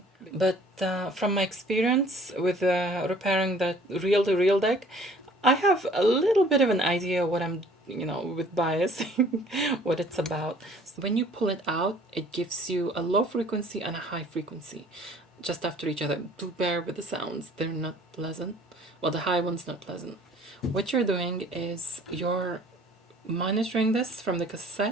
But from my experience with repairing that reel-to-reel deck, I have a little bit of an idea what I'm, with biasing, what it's about. So when you pull it out, it gives you a low frequency and a high frequency just after each other. Do bear with the sounds, they're not pleasant. Well, the high one's not pleasant. What you're doing is you're monitoring this from the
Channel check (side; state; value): both; normal; correlation 0.54